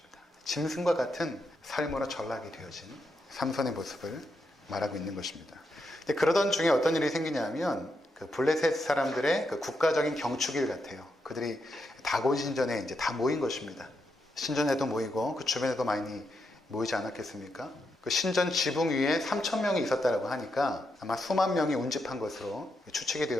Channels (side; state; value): both; normal; correlation 0.82